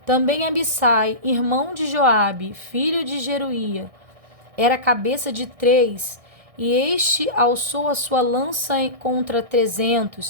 Também Abissai, irmão de Joabe, filho de Jeruía, era cabeça de 3, e este alçou a sua lança contra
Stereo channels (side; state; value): left; late; 1.6 ms